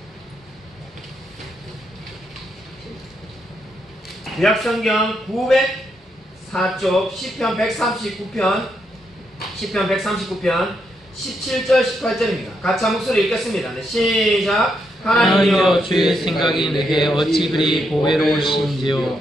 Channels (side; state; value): both; normal; correlation 0.79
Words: 구약 성경 904쪽 시편 139편 17절 18절입니다. 같이 한 목소리 읽겠습니다. 네, 시작. 하나님이여 주의 생각이 내게 어찌 그리 보배로우신지요